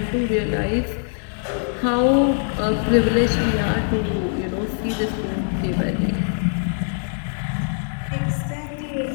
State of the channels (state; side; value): silent; right; digital silence